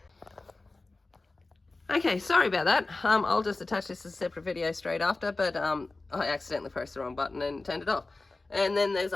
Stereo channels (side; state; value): right; quieter; 3.3 dB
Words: Okay, sorry about that. I'll just attach this as a separate video straight after, but I accidentally pressed the wrong button and turned it off. And then there's